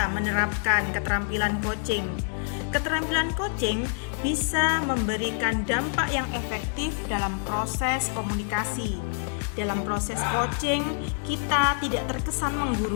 menerapkan keterampilan coaching. Keterampilan coaching bisa memberikan dampak yang efektif dalam proses komunikasi. Dalam proses coaching, kita tidak terkesan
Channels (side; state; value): right; silent; digital silence